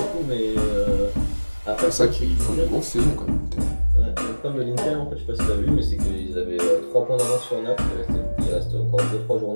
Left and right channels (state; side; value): inverted; both; correlation -1.00